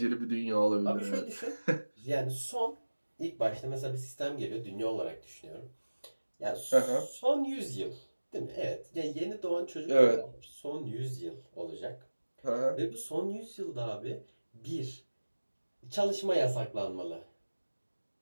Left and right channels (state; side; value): inverted; both; correlation -1.00